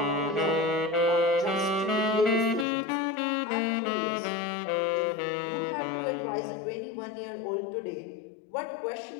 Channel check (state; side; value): drops out; right; at 2.7 s